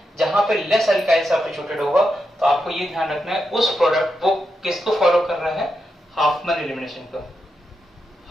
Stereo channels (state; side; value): normal; both; correlation 0.86